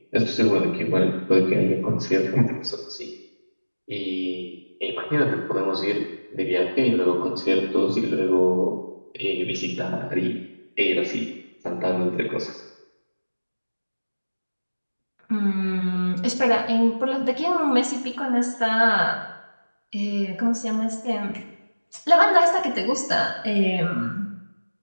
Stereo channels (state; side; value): inverted; both; correlation -1.00